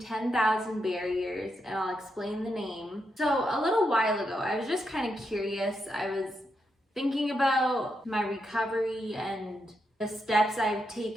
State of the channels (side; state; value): both; normal; correlation 0.83